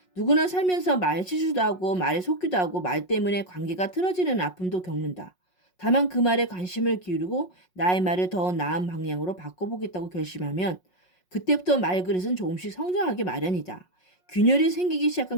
누구나 살면서 말 실수도 하고 말에 속기도 하고 말 때문에 관계가 틀어지는 아픔도 겪는다. 다만 그 말에 관심을 기울이고 나의 말을 더 나은 방향으로 바꿔보겠다고 결심하면 그때부터 말그릇은 조금씩 성장하기 마련이다. 균열이 생기기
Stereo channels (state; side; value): late; right; 5.5 ms